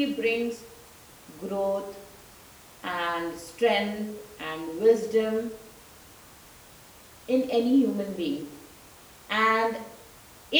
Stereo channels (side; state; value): both; identical; correlation 1.00